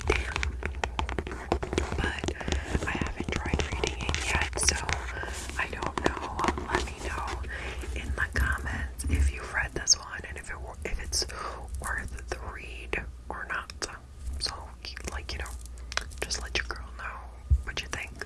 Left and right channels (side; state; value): both; identical; correlation 1.00